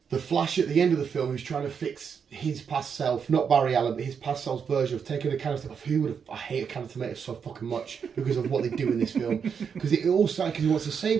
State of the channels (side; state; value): left; quieter; 6.7 dB